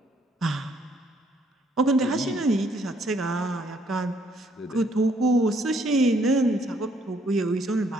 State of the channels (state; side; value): normal; both; correlation 0.67